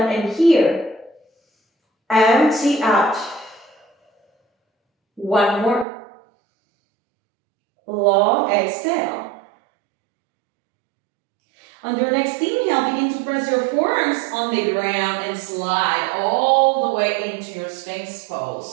and here. Empty out. One more. Long exhale. On your next inhale, begin to press your forearms on the ground and slide all the way into your Sphinx pose.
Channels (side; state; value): left; drops out; at 5.9 s